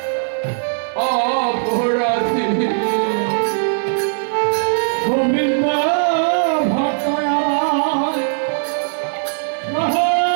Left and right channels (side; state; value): left; silent; digital silence